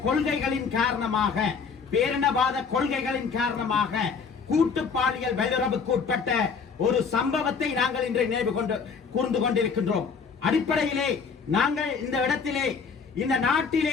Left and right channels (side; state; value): right; quieter; 5.7 dB